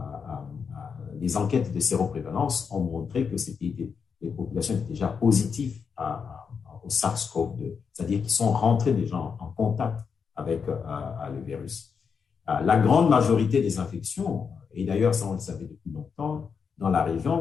les enquêtes de séroprévalence ont montré que les populations étaient déjà positives au SARS-CoV-2, c'est-à-dire qu'ils sont rentrés déjà en contact avec le virus. La grande majorité des infections, et d'ailleurs ça on le savait depuis longtemps, dans la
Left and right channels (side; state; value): right; quieter; 6.1 dB